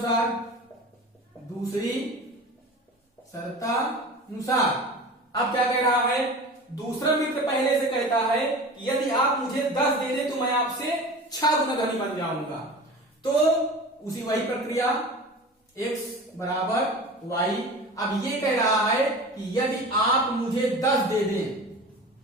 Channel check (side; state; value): both; normal; correlation 0.35